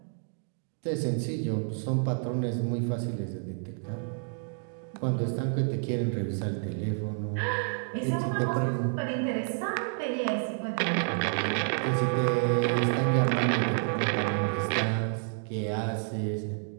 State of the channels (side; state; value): left; silent; 58 dB below the other